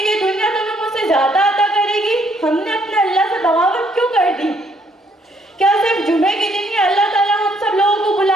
دنیا تمہیں مجھ سے زیادہ عطا کرے گی؟ ہم نے اپنے اللہ سے بغاوت کیوں کر دی؟ کیا صرف جمعے کے دن ہی اللہ تعالیٰ ہم سب لوگوں کو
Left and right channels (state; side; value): normal; both; correlation 0.68